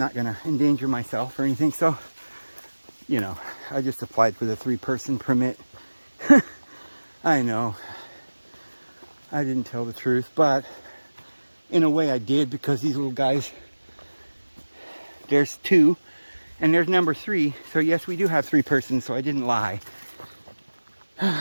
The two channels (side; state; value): both; inverted; correlation -1.00